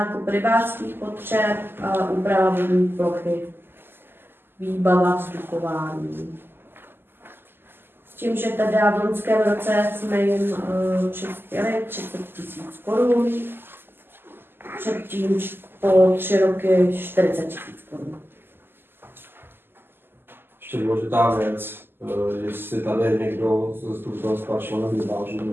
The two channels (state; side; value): late; left; 0.10 ms